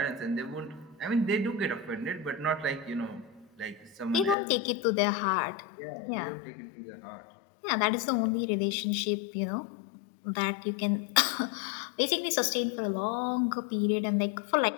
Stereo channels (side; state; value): right; drops out; at 4.4 s